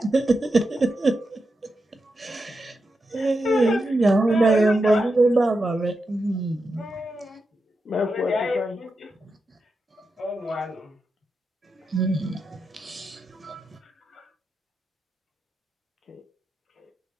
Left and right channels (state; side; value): normal; both; correlation 0.88